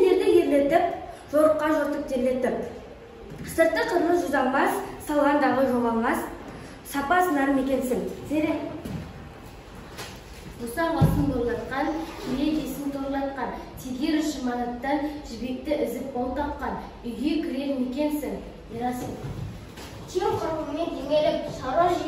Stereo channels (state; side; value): identical; both; correlation 1.00